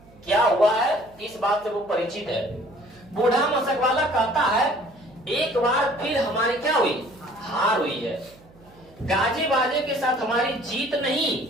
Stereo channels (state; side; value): noise; right; hum, 26 dB below the sound